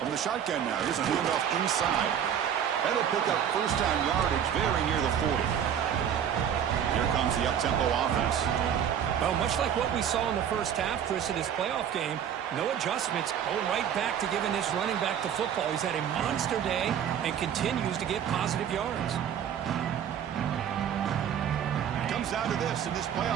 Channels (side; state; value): left; quieter; 9.0 dB